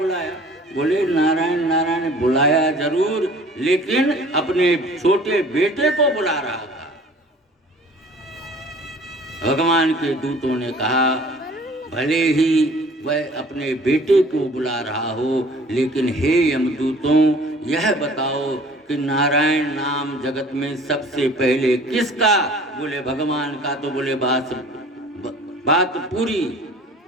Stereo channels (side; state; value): both; normal; correlation 0.49